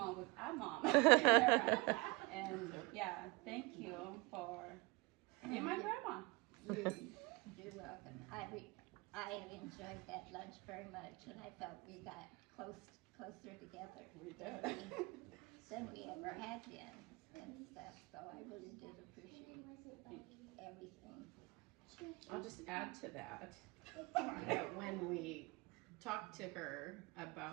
with our mom. And yeah, thank you for being my grandma. You're welcome. I enjoyed that lunch very much, and I felt we got closer together than we ever had been and stuff. So I really did appreciate everything. I'll just add to that, that when we talked to her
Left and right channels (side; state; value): left; quieter; 25.7 dB